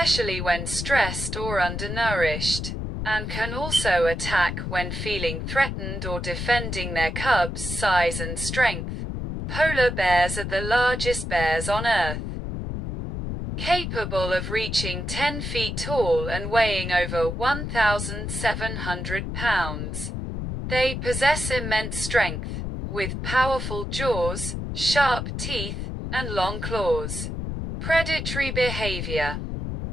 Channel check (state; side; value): noise; left; rumble, 4 dB below the sound